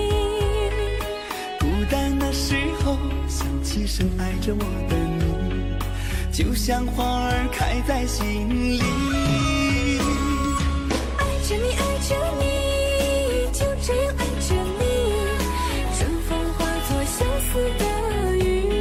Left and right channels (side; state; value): both; identical; correlation 1.00